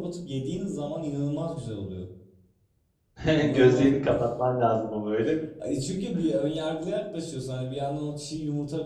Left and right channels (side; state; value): both; identical; correlation 1.00